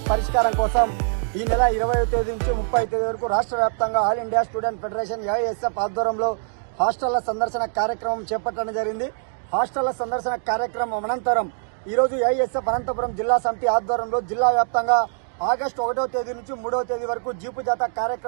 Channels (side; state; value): left; silent; digital silence